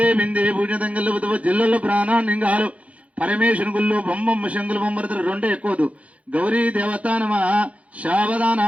బిందే పూజతంగల్లు బుధ జిల్లల్లో ప్రాణాన్నింగాలు పరమేశ్వరు గుళ్ళు బొమ్మమ్మ శంకులు బొమ్మరతులు రెండే ఎక్కువదు. గౌరీ దేవత నమ శావదాన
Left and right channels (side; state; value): left; late; 0.065 ms